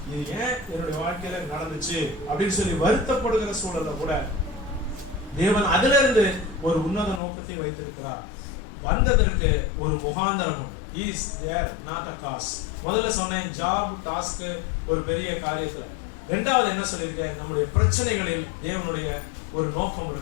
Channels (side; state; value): right; drops out; at 7.2 s